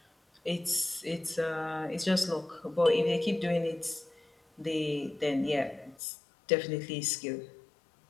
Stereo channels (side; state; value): right; drops out; at 6.0 s